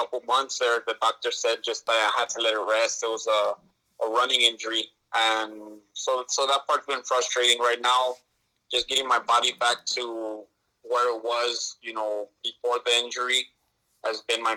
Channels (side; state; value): both; identical; correlation 1.00